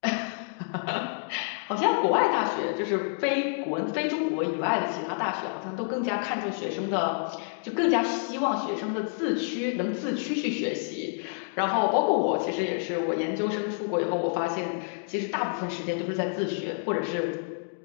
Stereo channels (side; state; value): right; silent; digital silence